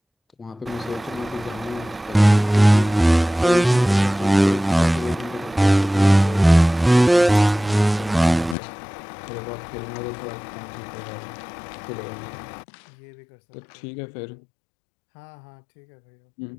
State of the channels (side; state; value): right; drops out; at 8.6 s